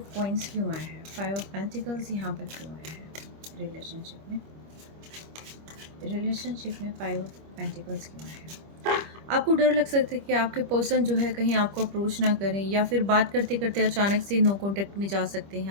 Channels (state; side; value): late; left; 25 ms